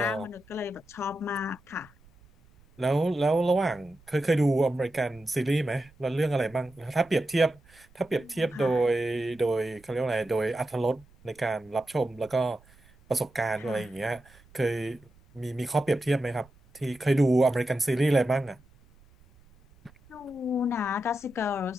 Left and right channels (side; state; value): right; noise; rumble, 28 dB below the sound